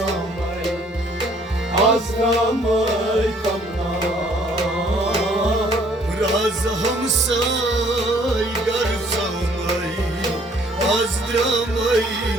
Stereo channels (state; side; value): normal; both; correlation 0.60